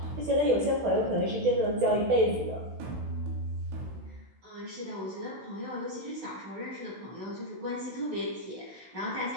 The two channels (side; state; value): left; late; 16 ms